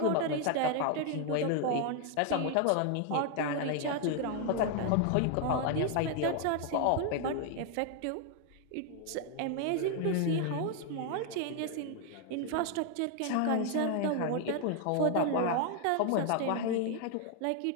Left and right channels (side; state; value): both; different; correlation 0.00